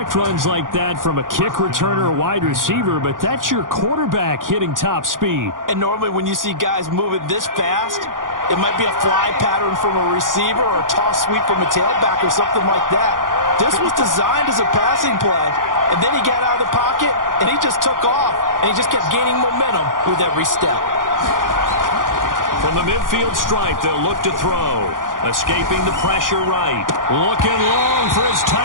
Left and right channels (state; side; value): late; left; 0.89 ms